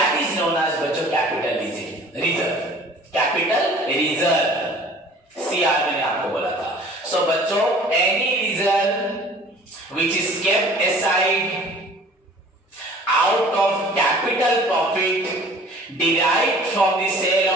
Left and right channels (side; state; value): both; normal; correlation 0.48